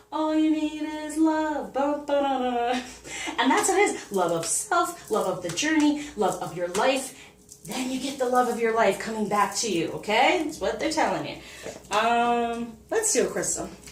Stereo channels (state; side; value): identical; both; correlation 1.00